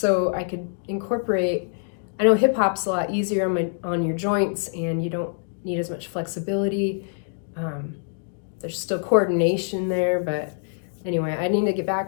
I could incorporate, I know hip hop's a lot easier on your joints, and you don't need as much flexibility. There's still coordination there, but anyway, I need to get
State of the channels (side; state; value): right; silent; digital silence